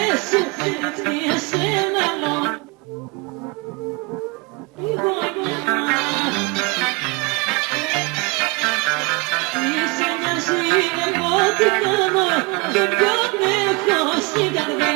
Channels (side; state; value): left; quieter; 28.1 dB